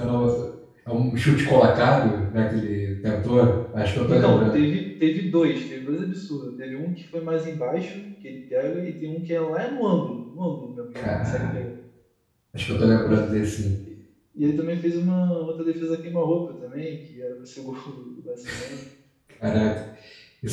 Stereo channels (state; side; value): identical; both; correlation 1.00